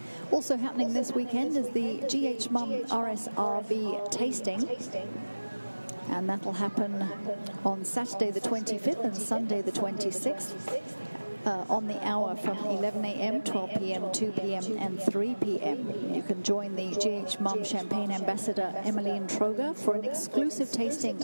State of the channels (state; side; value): inverted; both; correlation -1.00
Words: Also happening this weekend is the GH Mum RSRV tasting. And that will happen on Saturday the 25th and Sunday the 26th on the hour from 11 a.m., 12 p.m., 2 p.m. and 3 p.m. You can join the GH Mum Champagne Ambassador Emmeline Troger for an exclusive tasting